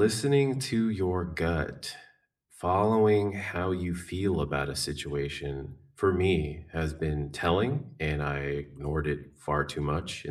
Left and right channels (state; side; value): identical; both; correlation 1.00